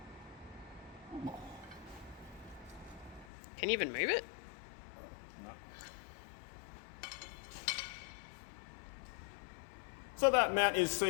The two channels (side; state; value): right; drops out; at 3.2 s